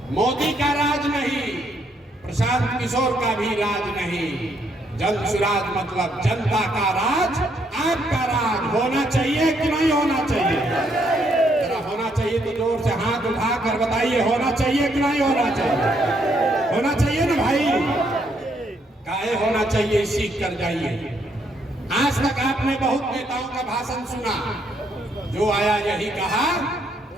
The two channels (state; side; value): normal; both; correlation 0.72